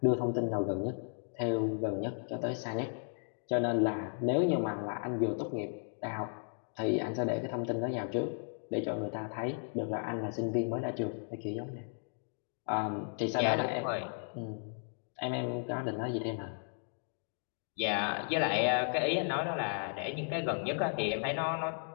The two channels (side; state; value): right; silent; 55 dB below the other